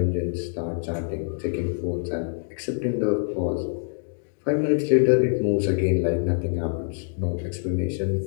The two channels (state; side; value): silent; right; digital silence